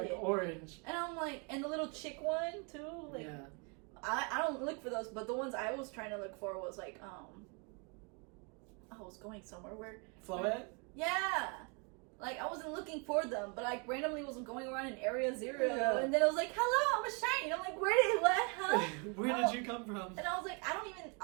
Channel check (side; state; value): left; quieter; 34.5 dB